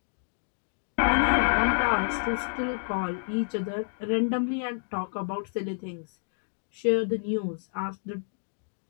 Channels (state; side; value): silent; right; digital silence